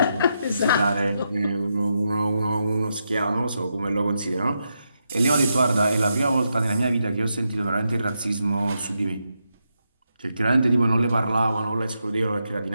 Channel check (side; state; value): both; inverted; correlation -0.84